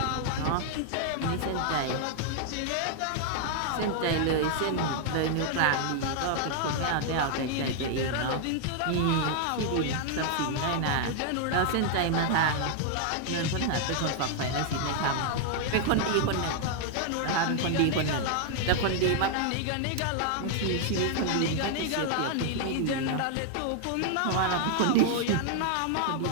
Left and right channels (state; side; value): different; both; correlation 0.00